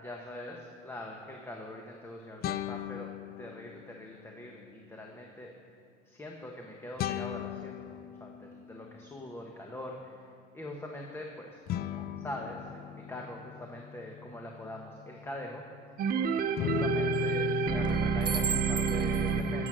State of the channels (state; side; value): normal; both; correlation 0.39